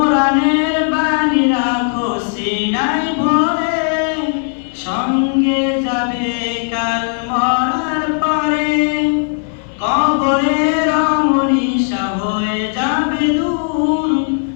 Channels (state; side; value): silent; right; 60 dB below the other